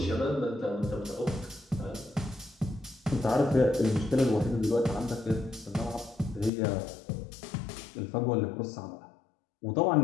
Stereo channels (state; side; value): drops out; right; at 6.5 s